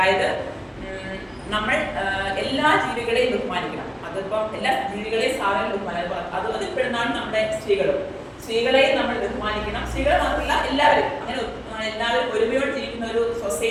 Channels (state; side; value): identical; both; correlation 1.00